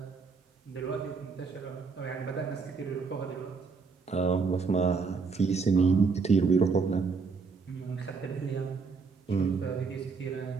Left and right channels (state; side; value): quieter; left; 4.9 dB